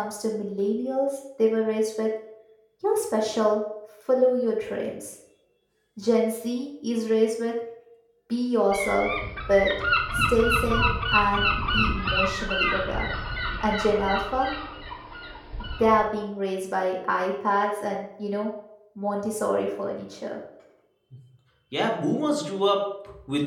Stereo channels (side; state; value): both; identical; correlation 1.00